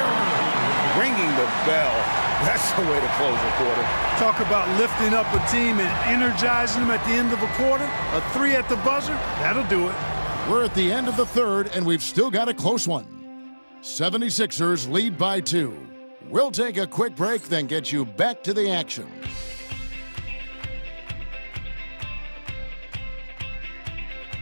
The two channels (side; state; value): both; inverted; correlation -1.00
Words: Ringing the bell. That's the way to close a quarter. Talk about lifting up a team and energizing them at the end of a quarter. A 3 at the buzzer, that'll do it. We're at the end of the third, and we've still got a close one. 76ers lead by 2. We'll take a quick break, then get you back to the action.